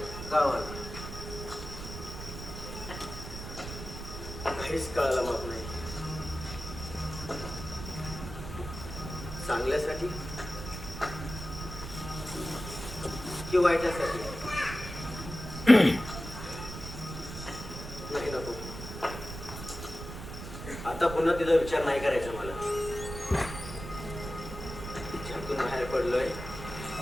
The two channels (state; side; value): noise; right; rumble, 9 dB below the sound